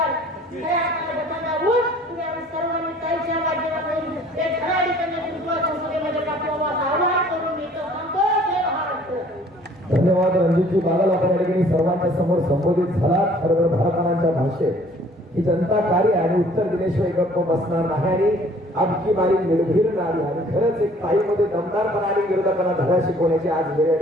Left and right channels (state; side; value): normal; both; correlation 0.55